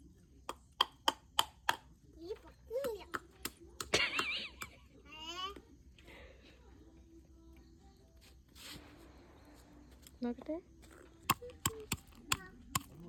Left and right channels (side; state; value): both; identical; correlation 1.00